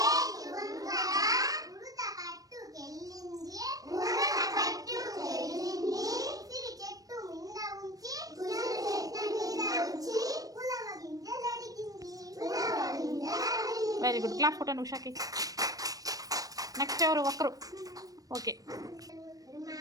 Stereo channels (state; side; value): late; left; 0.18 ms